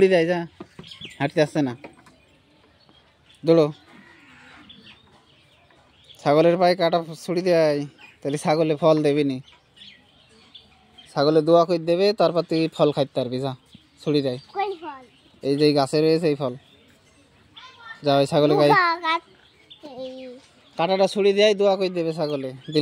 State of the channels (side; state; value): both; identical; correlation 1.00